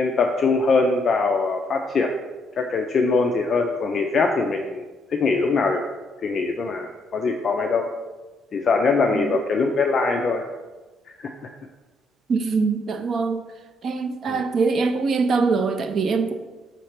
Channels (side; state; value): both; normal; correlation 0.73